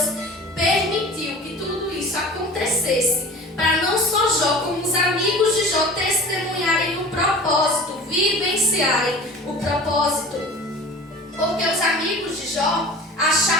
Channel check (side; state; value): both; normal; correlation 0.40